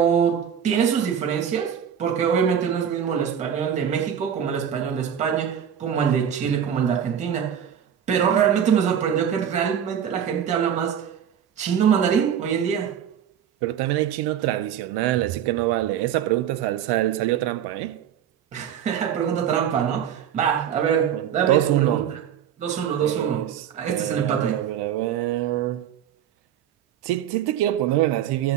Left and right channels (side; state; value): left; quieter; 9.0 dB